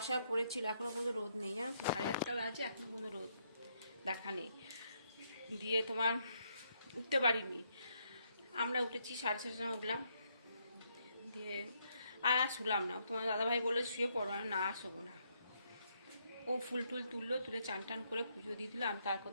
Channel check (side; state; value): both; inverted; correlation -0.75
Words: পড়েছিল, এখনো পর্যন্ত রোদ নেই। 8:30 বাজে, এখনো পর্যন্ত রোদ দেখা নেই। দিয়ে তোমার উঠতে পারিনি। আমরা উঠেছি 7:30টার সময় উঠলাম, দিয়ে আর শুলাম না। তোমার দাদাভাই বলে শুয়ে পড়ো, না শোবো না। ও ফুল টুল তুললো, তুলে চান টান করে পুজো দিয়ে দিল। আমি তার